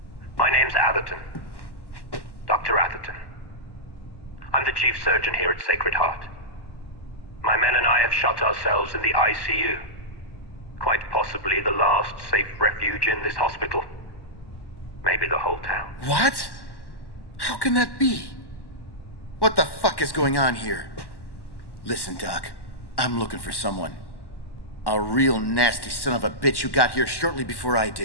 My name's Atherton. Dr. Atherton. I'm the chief surgeon here at Sacred Heart. My men and I have shut ourselves in the ICU. Quite possibly the last safe refuge in this hospital. Maybe the whole town. What? How can that be? What the fuck is going on here? Listen, Doc. I'm looking for someone. A real nasty son of a bitch who got here shortly before I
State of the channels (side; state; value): right; late; 1.1 ms